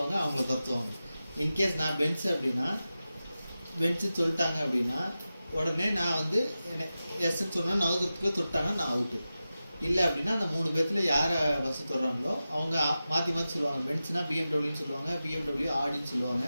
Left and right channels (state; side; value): inverted; both; correlation -0.93